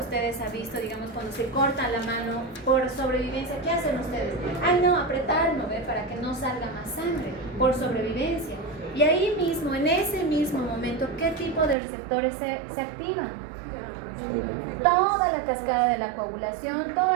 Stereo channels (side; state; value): left; drops out; at 11.8 s